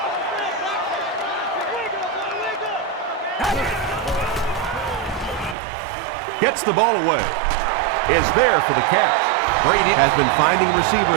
Gets the ball away. Is there for the catch. Brady has been finding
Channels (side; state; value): left; drops out; at 5.6 s